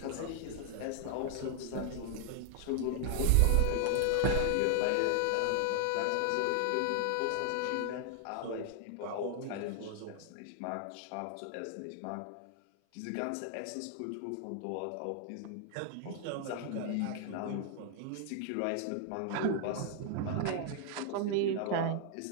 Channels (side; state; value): both; different; correlation 0.00